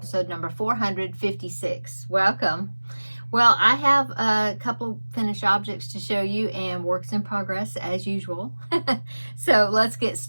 number 456. Welcome. Well, I have a couple of finished objects to show you and works in progress as usual. So let's get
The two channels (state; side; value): inverted; both; correlation -1.00